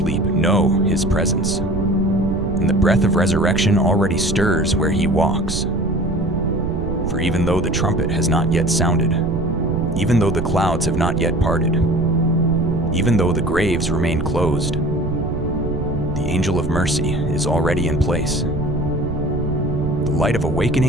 know his presence, and the breath of resurrection already stirs where he walks. For even though the trumpet has not yet sounded, even though the clouds have not yet parted, even though the graves remain closed, the angel of mercy is already in place. The light of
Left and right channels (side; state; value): right; noise; rumble, 4 dB below the sound